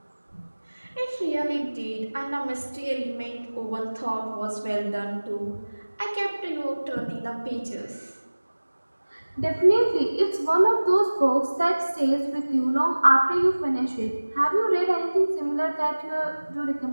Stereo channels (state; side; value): inverted; both; correlation -1.00